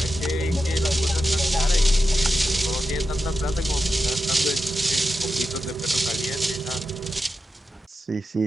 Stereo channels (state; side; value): normal; both; correlation 0.90